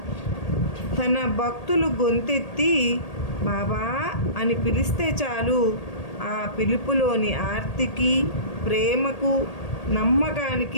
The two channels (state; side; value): late; right; 1.8 ms